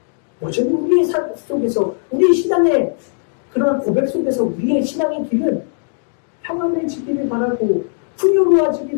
여전히 우리의 삶 속에서, 우리의 신앙의 그런 고백 속에서 우리의 신앙의 길은 평안해지기를 바라고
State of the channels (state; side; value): silent; right; digital silence